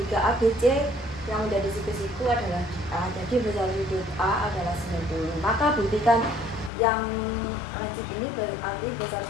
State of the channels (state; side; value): drops out; right; at 6.7 s